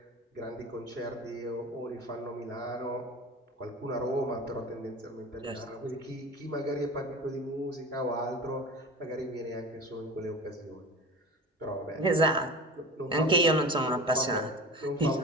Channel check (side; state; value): both; normal; correlation 0.34